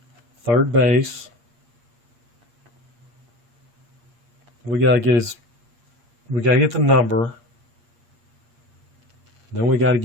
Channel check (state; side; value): late; left; 8.5 ms